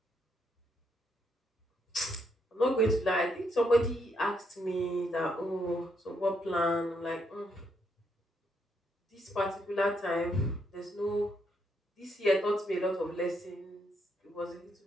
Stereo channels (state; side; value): normal; both; correlation 0.76